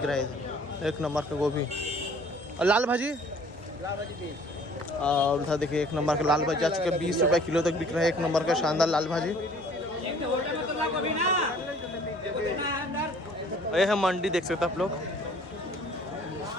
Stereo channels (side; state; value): both; normal; correlation 0.54